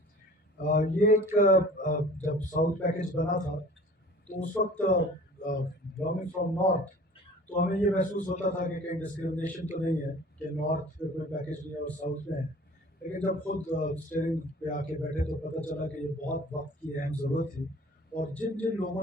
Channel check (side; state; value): both; normal; correlation 0.46